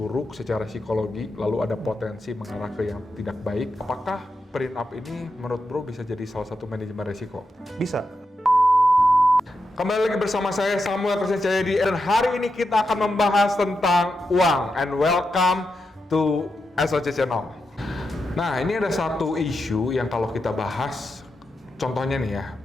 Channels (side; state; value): both; normal; correlation 0.87